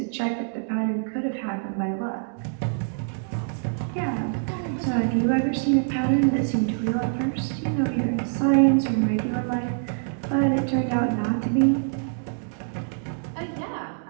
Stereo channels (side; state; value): left; silent; digital silence